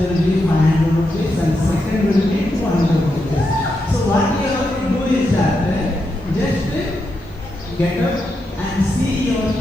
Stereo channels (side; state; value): both; normal; correlation 0.84